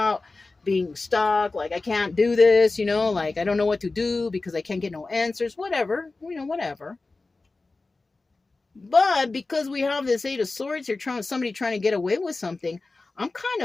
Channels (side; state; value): right; quieter; 3.5 dB